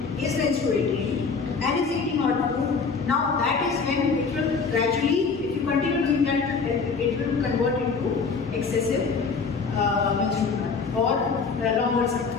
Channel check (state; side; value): quieter; right; 5.0 dB